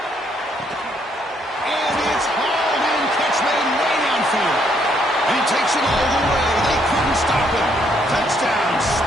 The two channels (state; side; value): normal; both; correlation 0.70